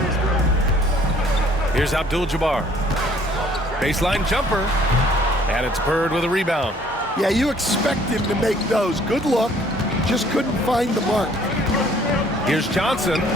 Here's Abdul-Jabbar. Baseline jumper. And it's Bird with a rebound. Yeah, you expect him to make those. Good look. Just couldn't find the mark. Here's Johnson.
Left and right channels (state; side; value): normal; both; correlation 0.59